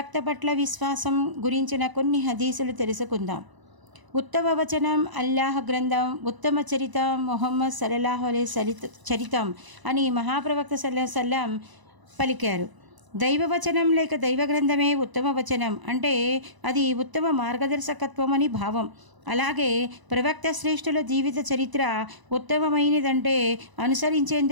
పట్ల విశ్వాసం గురించిన కొన్ని హదీసులు తెలుసుకుందాం. ఉత్తమ వచనం అల్లాహ్ గ్రంథం, ఉత్తమ చరితం ముహమ్మద్ సల్లల్లాహు అలైహి చరితం అని మహాప్రవక్త సల్లల్లాహు అలైహి వసల్లం పలికారు. దైవవచనం లేక దైవ గ్రంథమే ఉత్తమ వచనం అంటే అది ఉత్తమ మార్గదర్శకత్వం అని భావం. అలాగే ప్రవక్త శ్రేష్ఠుల జీవిత చరిత్ర ఉత్తమమైనదంటే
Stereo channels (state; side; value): late; left; 1.0 ms